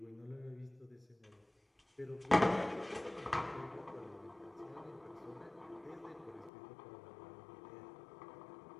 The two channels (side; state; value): right; drops out; at 6.5 s